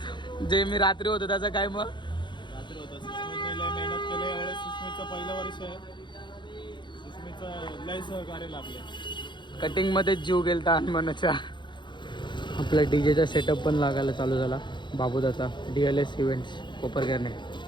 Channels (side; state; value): right; late; 0.23 ms